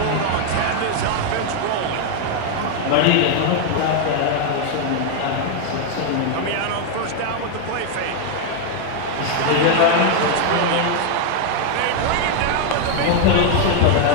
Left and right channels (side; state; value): both; different; correlation 0.00